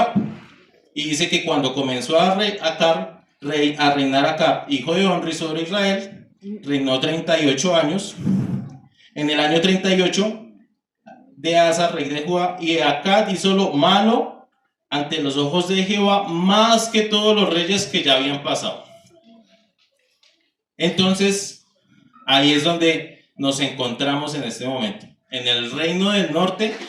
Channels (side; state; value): both; identical; correlation 1.00